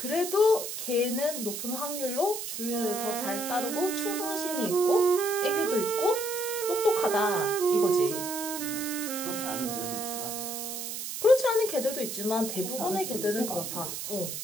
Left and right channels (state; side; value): noise; right; hiss, 6 dB below the sound